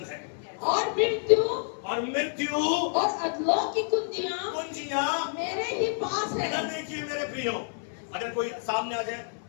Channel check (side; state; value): right; silent; 59 dB below the other